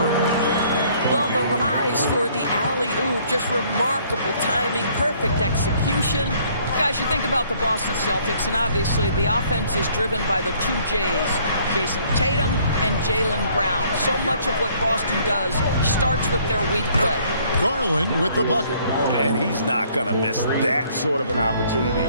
Well, the rise for the alley-oop, just remarkable timing, perfect execution. Guys, you think about the Boston Celtics, and obviously the offense is driven by the two J's, Jason Tatum and Jaylen Brown. So much of what Boston does starts with their wing play. Garland with the bucket. And he's not going to miss that sort of an opportunity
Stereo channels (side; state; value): both; inverted; correlation -0.61